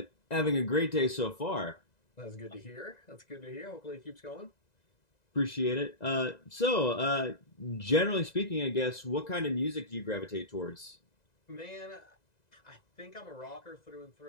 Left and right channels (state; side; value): late; right; 2.0 ms